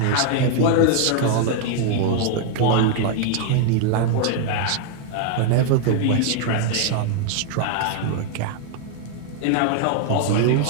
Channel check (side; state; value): both; different; correlation 0.00